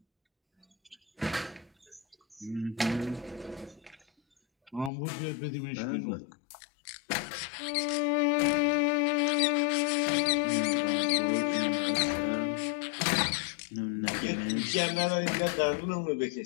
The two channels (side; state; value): right; drops out; at 4.9 s